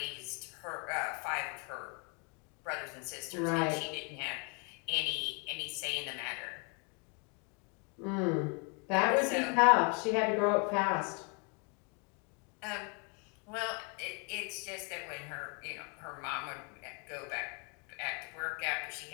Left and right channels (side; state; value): right; quieter; 34.9 dB